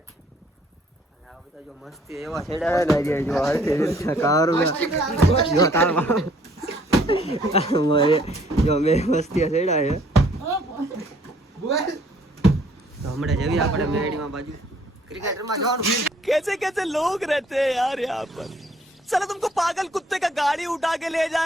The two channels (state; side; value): normal; both; correlation 0.61